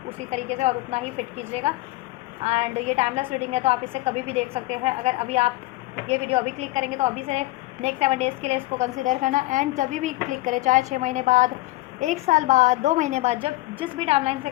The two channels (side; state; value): right; quieter; 18.9 dB